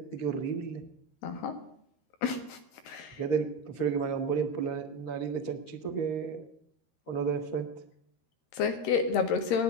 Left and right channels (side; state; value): right; late; 13 ms